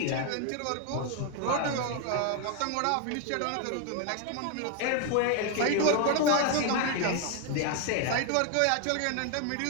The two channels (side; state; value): both; different; correlation 0.01